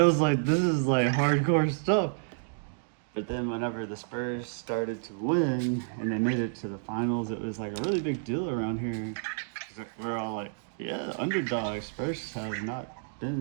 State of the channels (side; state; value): left; silent; digital silence